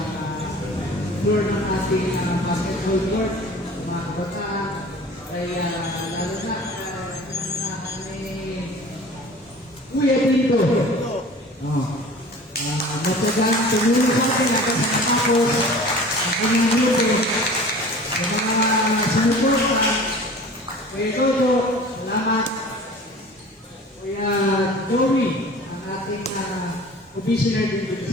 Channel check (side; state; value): both; normal; correlation 0.42